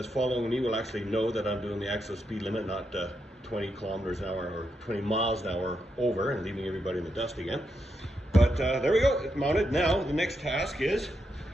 following me will actually know that I'm doing the actual speed limit, not 20 kilometers an hour or 20 miles an hour over and leaving everybody in the dust again. But there we go, it's mounted. Now the next task is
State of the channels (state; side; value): normal; both; correlation 0.83